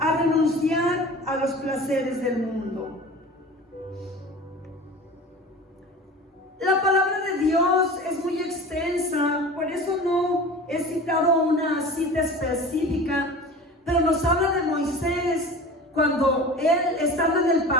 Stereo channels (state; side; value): normal; both; correlation 0.37